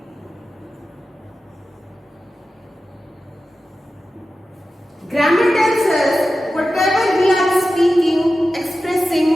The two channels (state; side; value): normal; both; correlation 0.93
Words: Grammar tells us whatever we are speaking, expressing